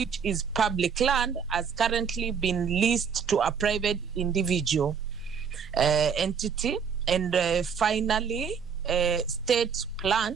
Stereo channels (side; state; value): left; quieter; 6.7 dB